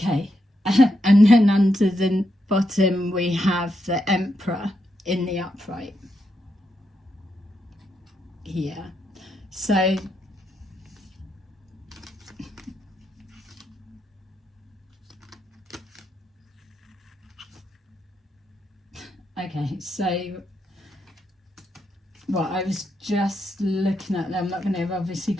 and then under the bottom we have the Emperor in the upright here. So okay, so well, I was just looking at them. I'm not going to obviously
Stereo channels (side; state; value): both; normal; correlation 0.82